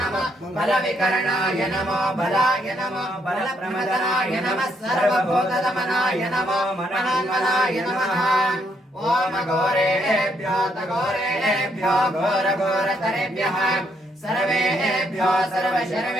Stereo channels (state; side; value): normal; both; correlation 0.73